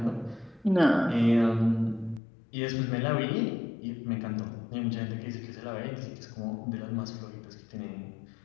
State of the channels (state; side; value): drops out; right; at 2.2 s